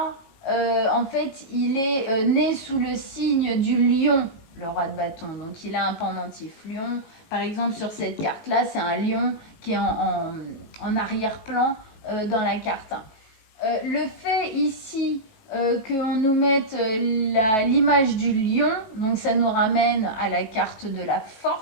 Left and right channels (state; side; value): late; right; 18 ms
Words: en fait, il est né sous le signe du lion, le roi de bâton. Donc il a un pendentif lion. Par exemple, sur cette carte-là, c'est un lion qui est en arrière-plan dans la carte. Le fait ici qu'on nous mette l'image du lion, donc ça nous ramène à la carte de la